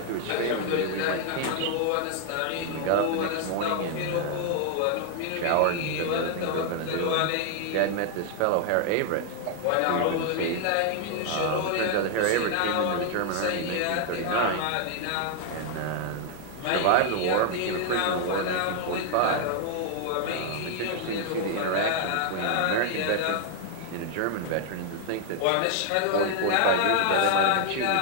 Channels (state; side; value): different; both; correlation 0.00